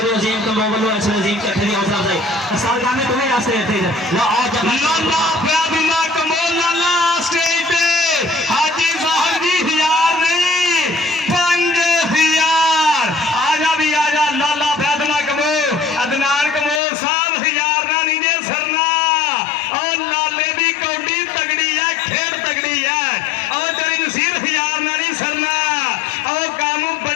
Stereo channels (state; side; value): drops out; right; at 16.8 s